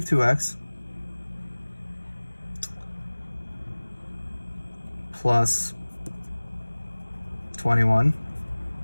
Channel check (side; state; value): both; inverted; correlation -1.00